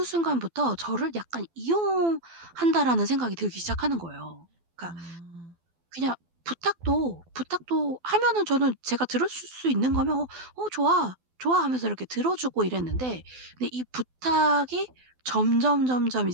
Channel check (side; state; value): left; late; 12 ms